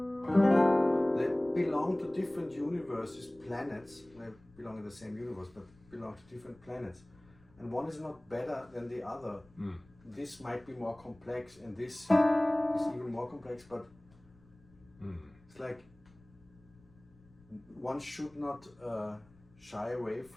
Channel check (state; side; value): noise; left; rumble, 28 dB below the sound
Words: They belong to different universes, planets. They belong in the same universe, but belong to different planets. And one is not better than the other. This might be more complex, and this is even more complex, but it's like one should not shy away